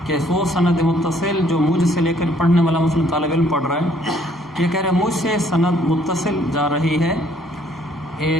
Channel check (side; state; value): both; normal; correlation 0.63